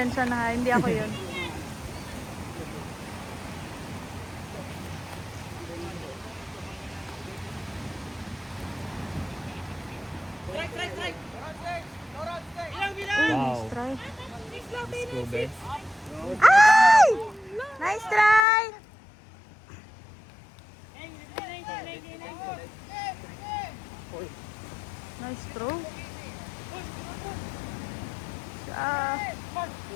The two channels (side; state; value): right; drops out; at 18.4 s